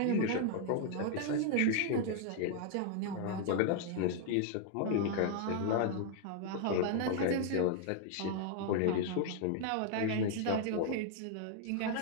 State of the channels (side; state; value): both; different; correlation 0.00